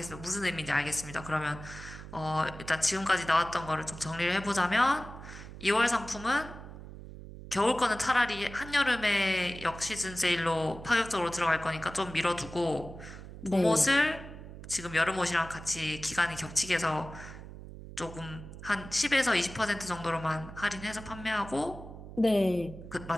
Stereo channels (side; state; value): right; noise; hum, 13 dB below the sound